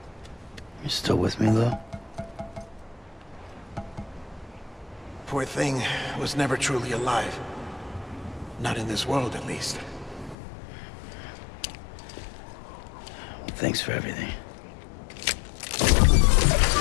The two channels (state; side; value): drops out; right; at 10.4 s